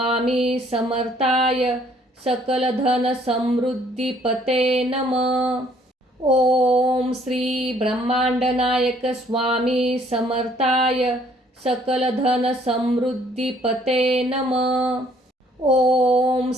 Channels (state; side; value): normal; both; correlation 0.63